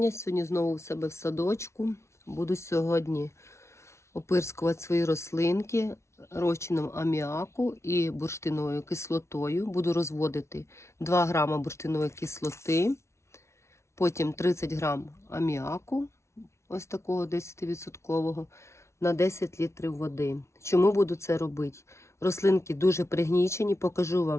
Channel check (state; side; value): late; right; 0.13 ms